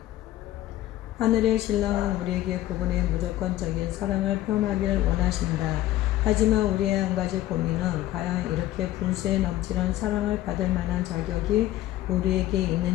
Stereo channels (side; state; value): right; quieter; 14.6 dB